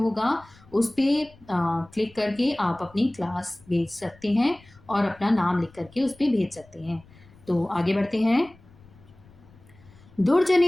उस पर क्लिक करके आप अपनी क्लास भेज सकते हैं और अपना नाम लिख करके उस पर भेज सकते हैं। तो आगे बढ़ते हैं।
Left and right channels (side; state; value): left; noise; rumble, 26 dB below the sound